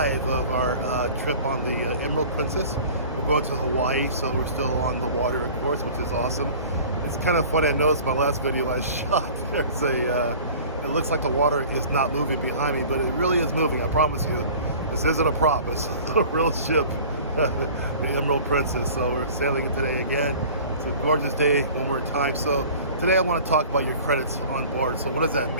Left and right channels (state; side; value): inverted; both; correlation -0.44